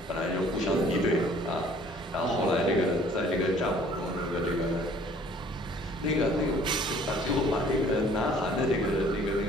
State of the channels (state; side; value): normal; both; correlation 0.55